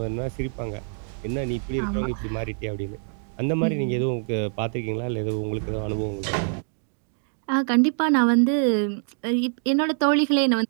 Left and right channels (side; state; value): left; silent; 62 dB below the other